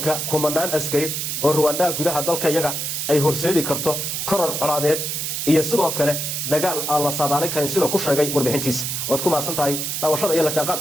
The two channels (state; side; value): noise; right; hiss, 2 dB below the sound